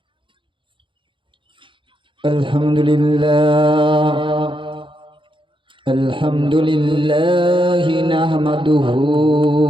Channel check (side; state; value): left; late; 0.24 ms